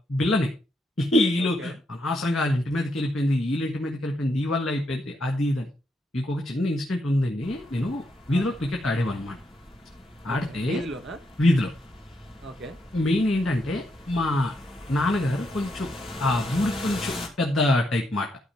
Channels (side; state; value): both; normal; correlation 0.79